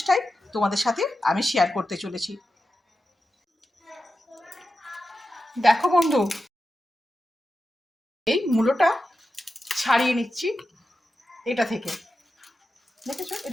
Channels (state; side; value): normal; both; correlation 0.91